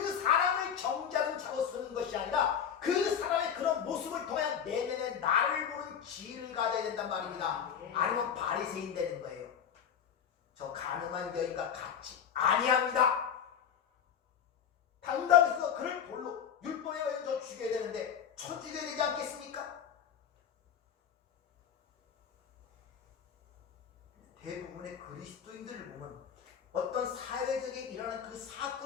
사람을 정죄하는 자로 쓰는 것이 아니라 그 사람의 그런 모습을 통해 내면에 나를 보는 지혜를 가져야 된단 말입니다. 아니면 바리새인 되는 거예요. 저 가늠한 여인과 같이 아니합니다. 당당해서 그를 돌로 율법에 의해 저 죽여야 되는데 쳐 죽여야 되지 않겠습니까? 대부분의 그리스도인들을 보면 어떤 사회적에 일어나는 그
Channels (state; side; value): quieter; right; 8.1 dB